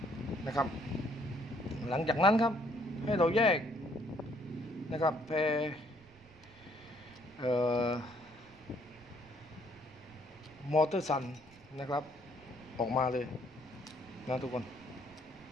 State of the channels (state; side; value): noise; right; rumble, 26 dB below the sound